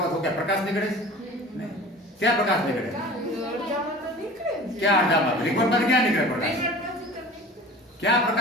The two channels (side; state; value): both; normal; correlation 0.40